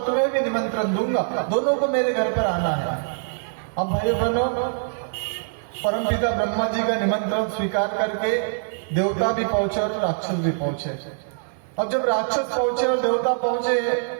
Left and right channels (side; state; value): left; silent; digital silence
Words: तुम्हें भी निमंत्रण दूंगा, दोनों को मेरे घर पर आना है। अब भाई बहनों, परमपिता ब्रह्मा जी का निमंत्रण स्वीकार करके देवता भी पहुंचे और राक्षस भी पहुंचे। अब जब राक्षस पहुंचे और देवता पहुंचे,